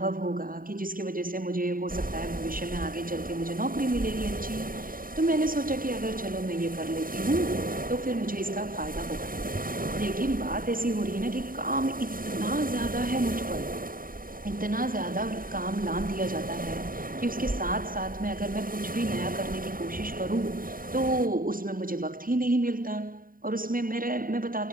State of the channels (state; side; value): late; left; 0.41 ms